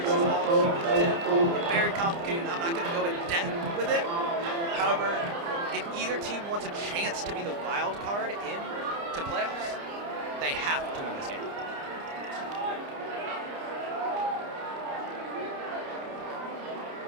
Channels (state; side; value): late; left; 29 ms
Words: is all cumulative and very complicated, and I'm not going to go in depth with it. However, if either team wants a chance to be the wild card in to playoffs, they have to win this game.